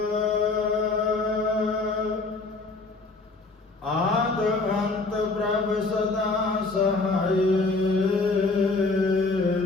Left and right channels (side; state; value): right; quieter; 3.6 dB